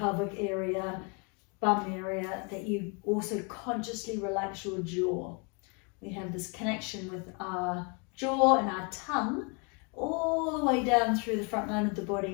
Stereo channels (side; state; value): right; quieter; 34.5 dB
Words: area, bum area, that you also consciously relax your jaw. We have this connection with our jaw and our tongue all the way down through the front line of the